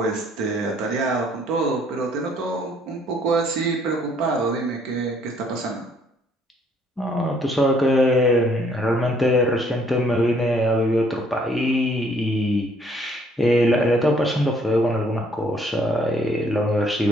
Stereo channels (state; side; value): normal; both; correlation 0.64